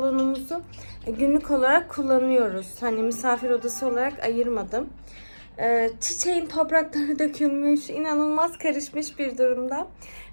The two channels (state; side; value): inverted; both; correlation -1.00